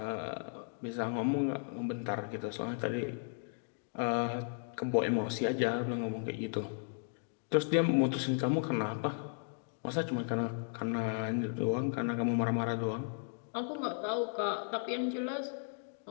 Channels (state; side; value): silent; right; digital silence